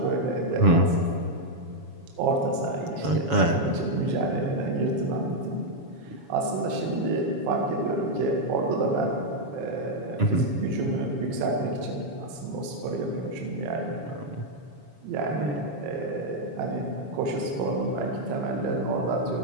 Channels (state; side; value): late; left; 7.1 ms